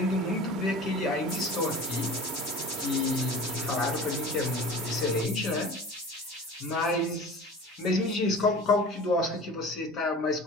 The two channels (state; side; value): normal; both; correlation 0.39